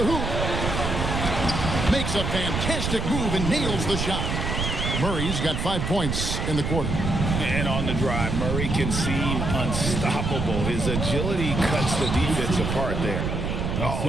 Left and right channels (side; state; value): right; noise; rumble, 2 dB below the sound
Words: hoop. Makes a fantastic move and nails the shot. Murray's got 5 points in the quarter. And on the drive, Murray can seem unstoppable. His agility cuts the defense apart there.